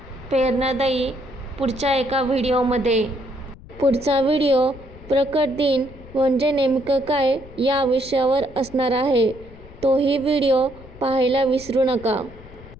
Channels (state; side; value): noise; left; rumble, 19 dB below the sound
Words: प्रेरणादायी पुढच्या एका व्हिडिओमध्ये. पुढचा व्हिडिओ प्रकट दिन म्हणजे नेमकं काय या विषयावर असणार आहे. तोही व्हिडिओ पाहायला विसरू नका.